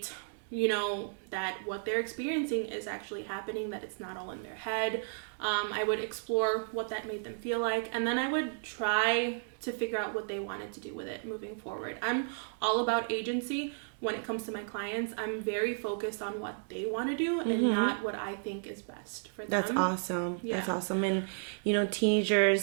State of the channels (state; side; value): silent; left; digital silence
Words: you know, that what they're experiencing is actually happening, that it's not all in their head. I would explore what that made them feel like, and then I would try to figure out what they wanted to do with it moving forward. I'm all about agency when it comes to my clients. I'm very focused on what they want to do and not what I think is best for them. That's awesome. Yeah. That's awesome. And, you know,